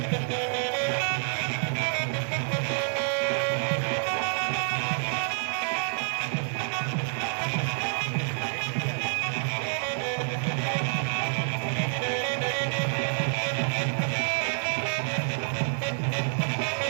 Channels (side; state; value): left; silent; 59 dB below the other